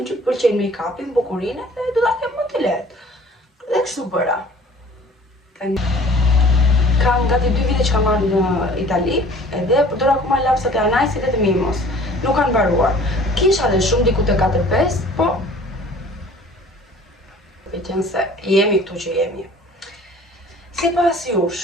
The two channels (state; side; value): normal; both; correlation 0.49